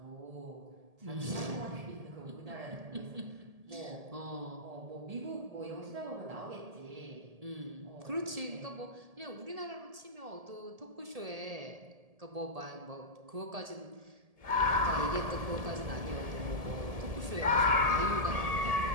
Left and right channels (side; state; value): left; late; 1.7 ms